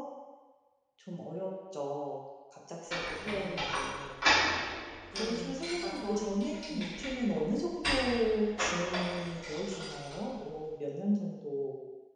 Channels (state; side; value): identical; both; correlation 1.00